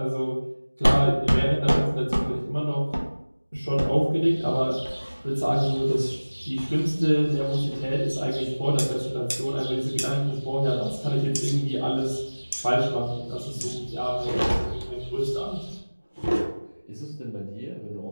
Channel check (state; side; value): inverted; both; correlation -1.00